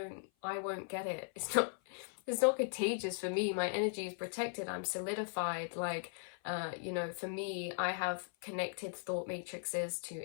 won't get it. It's not contagious for me. My energy is protected. I'm solidified." Like, for me, I have connected thought matrices to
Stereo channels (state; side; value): silent; right; 52 dB below the other